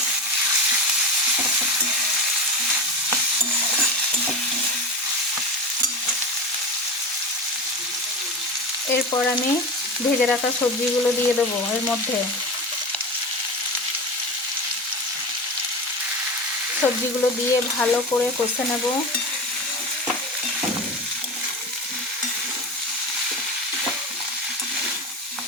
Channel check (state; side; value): normal; both; correlation 0.24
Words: এরপর আমি ভেজে রাখা সবজিগুলো দিয়ে দেবো এর মধ্যে। সবজিগুলো দিয়ে ভালো করে কষে নেব।